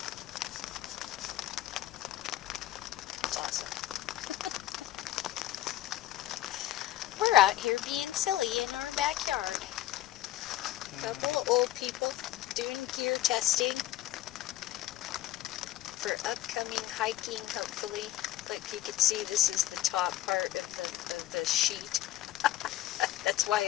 It's awesome. We're out here being silly in our backyard. Couple of old people doing gear testing for upcoming hiking, hopefully. Like you can see, this is the top part of the sheet. That's why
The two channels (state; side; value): quieter; right; 14.2 dB